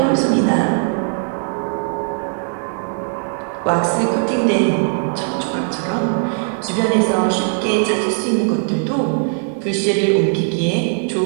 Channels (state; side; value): silent; left; 57 dB below the other